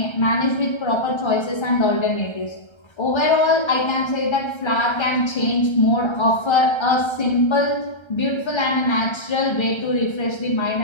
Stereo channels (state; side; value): late; right; 1.3 ms